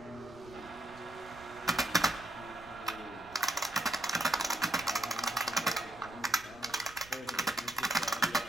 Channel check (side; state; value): right; noise; rumble, 21 dB below the sound